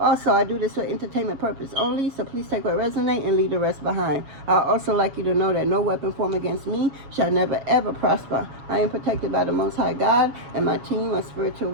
Also, I do this for entertainment purpose only, so please take what resonates and leave the rest behind. I'd also like you to know that no weapon formed against me shall never ever prosper. I am protected by the Most High God and my team of spiritual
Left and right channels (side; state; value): left; late; 7.2 ms